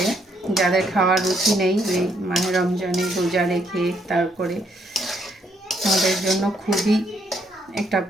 যাদের খাওয়ার রুচি নেই, এই মাহে রমজানে রোজা রেখে তারপরে আমাদের জন্য খুবই একটা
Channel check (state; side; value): normal; both; correlation 0.72